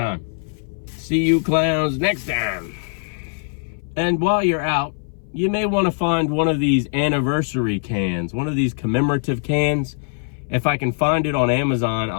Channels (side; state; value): right; silent; 60 dB below the other